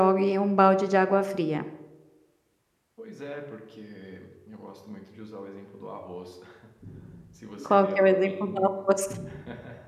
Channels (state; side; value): identical; both; correlation 1.00